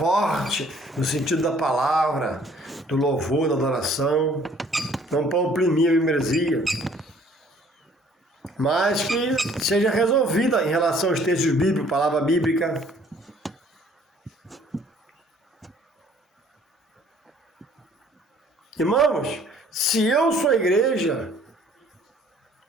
no sentido da palavra, do louvor, da adoração, não para oprimir a membresia, mas que seja resolvida em relação aos textos bíblicos, palavra bíblica. Irmãos, se eu sou a igreja,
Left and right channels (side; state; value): both; normal; correlation 0.57